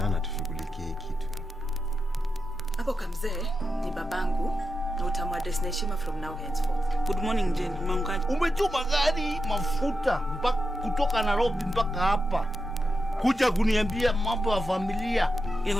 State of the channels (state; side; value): normal; both; correlation 0.88